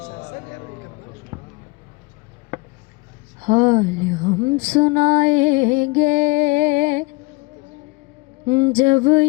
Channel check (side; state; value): right; quieter; 25.3 dB